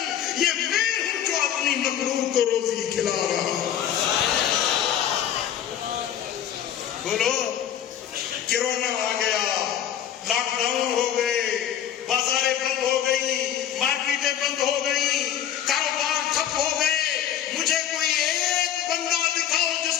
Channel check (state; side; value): quieter; right; 10.2 dB